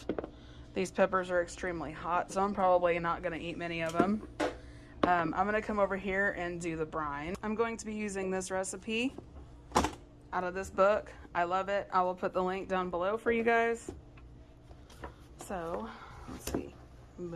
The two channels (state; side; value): identical; both; correlation 1.00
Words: These peppers are extremely hot, so I'm probably not gonna eat many of them. I'm gonna come over here and do the brine. I'm going to be using this recipe out of this book. I love it. I will put the link down below for you guys. So let's see,